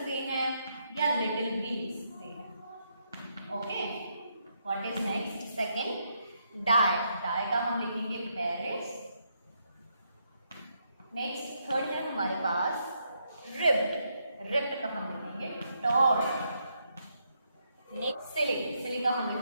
हैं या little भी लिख सकते हैं. Okay. What is next? Second, die. die का हम लिखेंगे Paris. नेक्स्ट थर्ड है हमारे पास रिप्ड, रिप्ड का हम लिखेंगे टॉर्ड. नेक्स्ट सिली, सिली का हम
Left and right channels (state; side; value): inverted; both; correlation -0.78